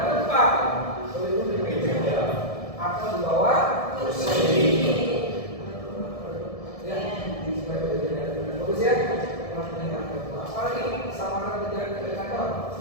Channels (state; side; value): late; right; 1.7 ms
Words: berlindung di meja atau di bawah kursi. Ya, di bagus ya. Apalagi sama dengan di kantor.